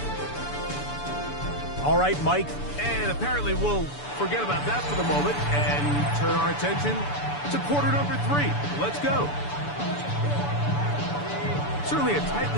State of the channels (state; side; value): late; right; 6.9 ms